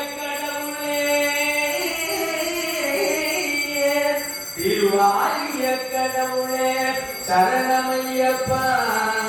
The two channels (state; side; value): identical; both; correlation 1.00